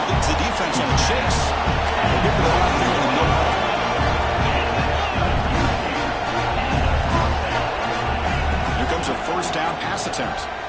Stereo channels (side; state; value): both; identical; correlation 1.00